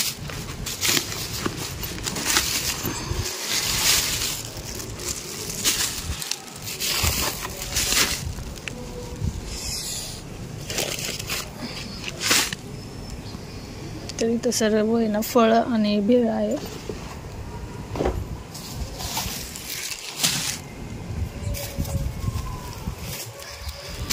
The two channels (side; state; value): both; identical; correlation 1.00